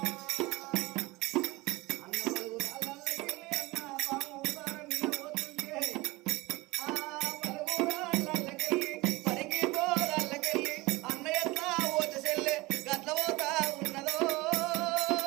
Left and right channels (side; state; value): left; quieter; 22.1 dB